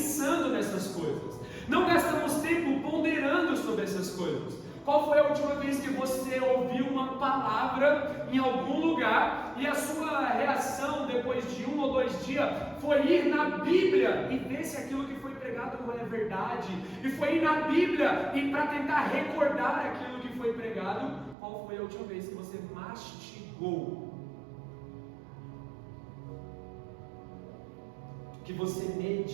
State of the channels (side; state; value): left; drops out; at 21.4 s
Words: nessas coisas. Não gastamos tempo ponderando sobre essas coisas. Qual foi a última vez que você ouviu uma palavra em algum lugar e a sua reação depois de 1 ou 2 dias foi ir na Bíblia e ver se aquilo que foi pregado é verdade? E foi ir na Bíblia e para tentar recordar aquilo que foi pregado? Qual foi a última vez que você mastigou? Que você